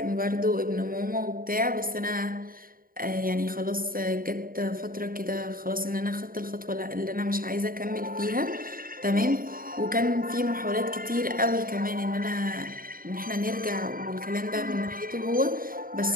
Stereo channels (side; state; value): left; late; 0.41 ms